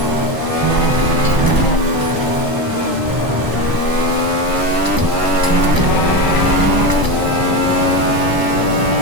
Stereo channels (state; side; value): late; left; 1.0 ms